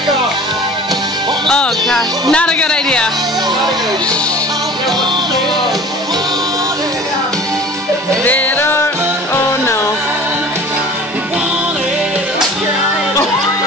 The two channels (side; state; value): both; normal; correlation 0.43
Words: off. Oh, gosh. Not a good